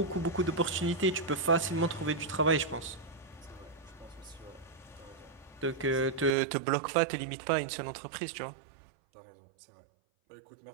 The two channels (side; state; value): left; drops out; at 6.4 s